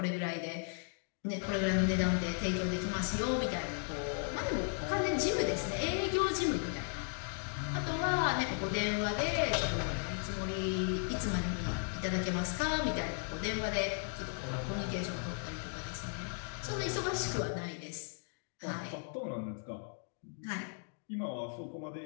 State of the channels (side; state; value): right; silent; 54 dB below the other